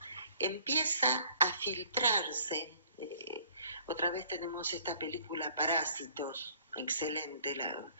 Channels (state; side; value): inverted; both; correlation -0.57